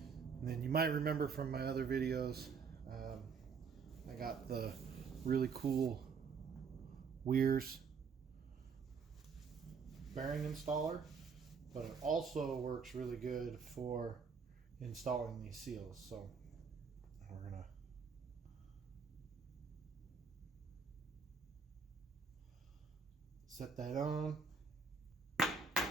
then you might remember from my other videos, I got the really cool Weir's bearing installer, but it also works really good for installing these seals. So we're gonna set that on.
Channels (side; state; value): left; quieter; 5.5 dB